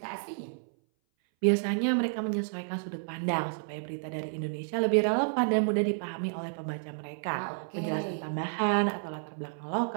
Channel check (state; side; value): silent; left; 57 dB below the other